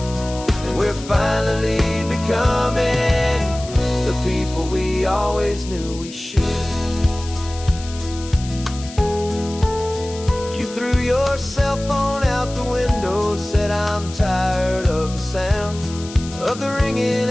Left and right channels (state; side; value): noise; left; hiss, 15 dB below the sound